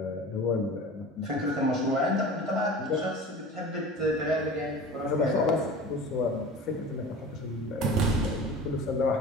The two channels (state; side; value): normal; both; correlation 0.37